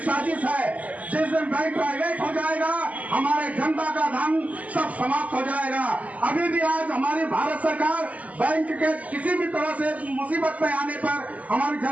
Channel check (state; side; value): late; left; 0.073 ms